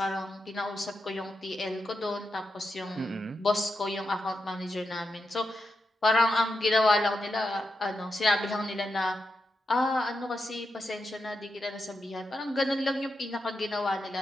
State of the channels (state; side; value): normal; both; correlation 0.87